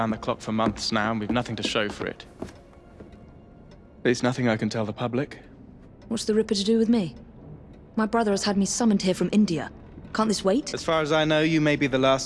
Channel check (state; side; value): identical; both; correlation 1.00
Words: the clock for months now, and we've nothing to show for it. There's nothing I can tell the public. What's the Ripper to do with me? My brother has had me summoned here from India. Can't this wait? As far as I know, you may be the